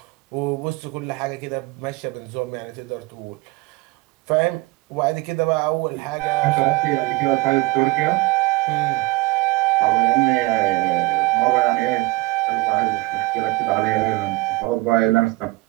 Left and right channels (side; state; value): left; quieter; 22.5 dB